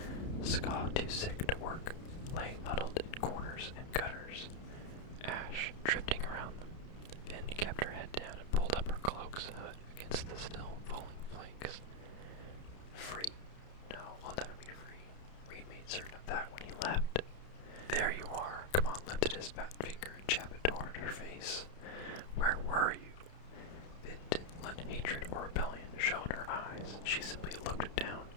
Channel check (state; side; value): late; right; 31 ms